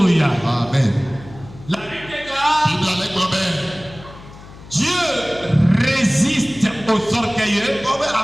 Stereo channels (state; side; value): noise; left; hum, 18 dB below the sound